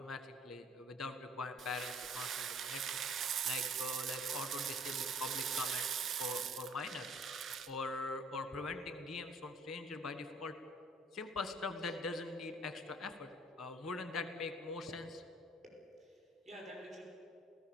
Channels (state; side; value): normal; both; correlation 0.56